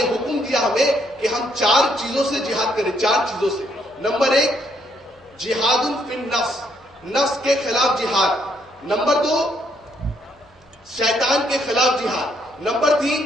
حکم دیا ہمیں کہ ہم 4 چیزوں سے جہاد کریں. 4 چیزوں سے. نمبر 1 جہاد فی النفس, نفس کے خلاف جہاد. نمبر 2 شیطان کے خلاف جہاد. نمبر 3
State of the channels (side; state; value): both; normal; correlation 0.71